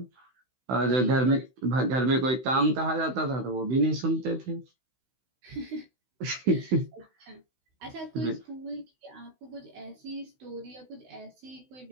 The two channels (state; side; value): late; left; 16 ms